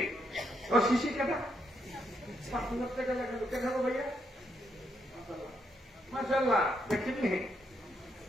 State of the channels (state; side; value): normal; both; correlation 0.77